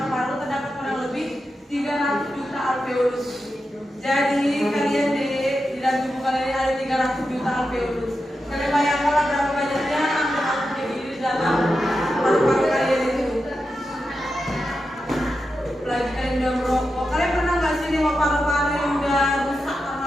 Terdapat kurang lebih 300 juta alveolus. Jadi kalian di dalam tubuh kalian ada 300 juta alveolus. Kalian bayangkanlah berapa banyaknya angka-angka di dalam paru-paru kalian itu. Apalagi kalian udah merokok. Kalian pernah nggak sih nengok paru-paru yang udah rusak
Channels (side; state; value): both; normal; correlation 0.89